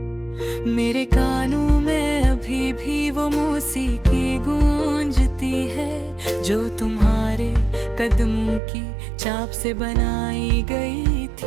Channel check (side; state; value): left; drops out; at 8.6 s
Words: मेरे कानों में अभी भी वो मौसीकी गूंजती है जो तुम्हारे कदमों की चाप से बनाई गई